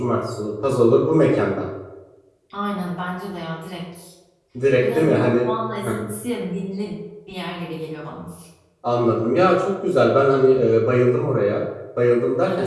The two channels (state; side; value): identical; both; correlation 1.00